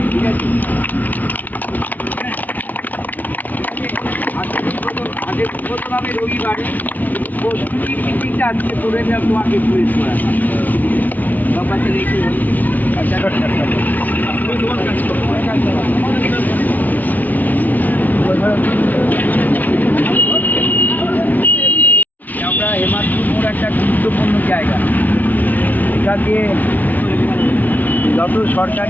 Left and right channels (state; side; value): late; right; 0.079 ms